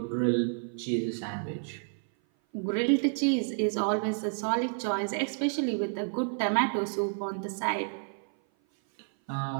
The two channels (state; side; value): silent; left; 56 dB below the other